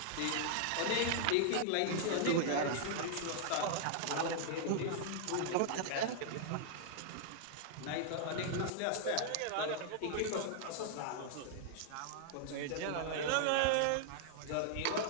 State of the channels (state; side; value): different; both; correlation -0.01